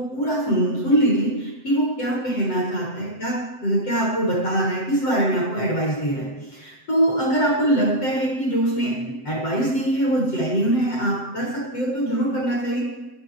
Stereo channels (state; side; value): late; right; 7.8 ms